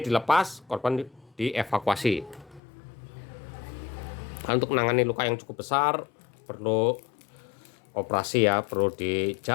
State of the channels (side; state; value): right; drops out; at 2.6 s